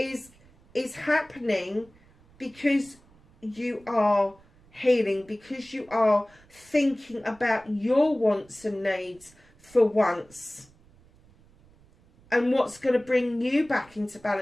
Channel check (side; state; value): right; noise; rumble, 28 dB below the sound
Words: happening because you are healing, because you are thinking about your wants and needs for once, and what's going to bring you back into